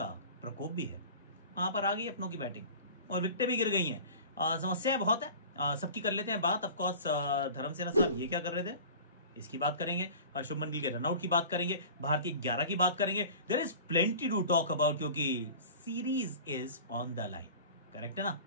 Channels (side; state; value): both; inverted; correlation -0.39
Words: प्रकोप भी है। वहां पर आ गई अपनों की बैटिंग और विकेटें भी गिर गई हैं। समस्याएं बहुत है, सबकी कर लेते हैं बात। ऑफकोर्स धर्मसेना साहब ये क्या कर रहे थे इसकी बात करेंगे, शुभमन गिल के रनआउट की बात करेंगे, भारतीय 11 की बात करेंगे। There is plenty to talk about क्योंकि series is on the line. Correct है ना?